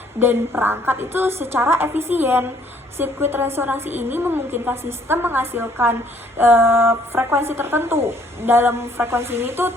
dan perangkat itu secara efisien. Sirkuit resonansi ini memungkinkan sistem menghasilkan frekuensi tertentu. Dalam frekuensi ini tuh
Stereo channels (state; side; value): normal; both; correlation 0.62